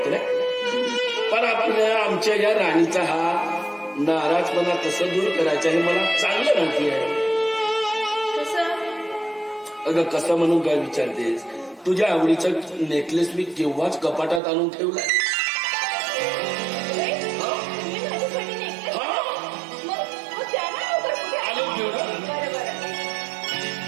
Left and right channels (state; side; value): drops out; left; at 14.4 s